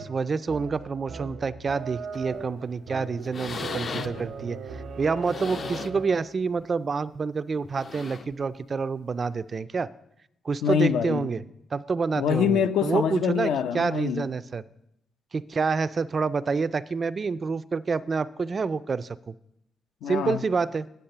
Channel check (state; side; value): normal; both; correlation 0.78